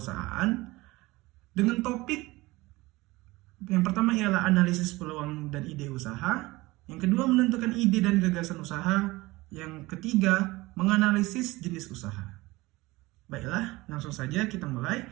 dengan topik yang pertama ialah analisis peluang dan ide usaha. Yang kedua, menentukan ide dan gagasan usaha. Yang ketiga, menganalisis jenis usaha. Baiklah, langsung saja kita mulai,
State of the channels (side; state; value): left; quieter; 20.7 dB